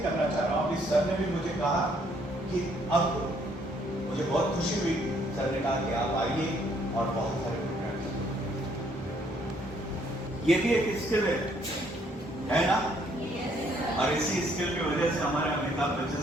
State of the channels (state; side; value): normal; both; correlation 0.67